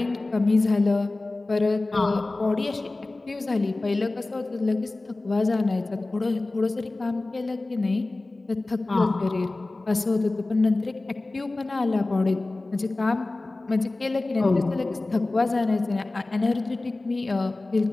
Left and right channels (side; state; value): right; quieter; 3.0 dB